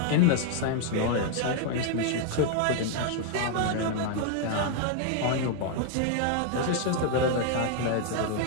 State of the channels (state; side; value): different; both; correlation 0.00